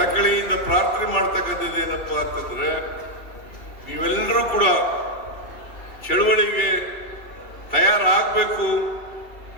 ಪ್ರಾರ್ಥನೆ ಮಾಡ್ತಕ್ಕಂಥದ್ದು ಏನಪ್ಪಾ ಅಂತಂದ್ರೆ, ನೀವೆಲ್ಲರೂ ಕೂಡ ಚಳುವಳಿಗೆ ತಯಾರಾಗಬೇಕು,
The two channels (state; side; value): late; right; 2.7 ms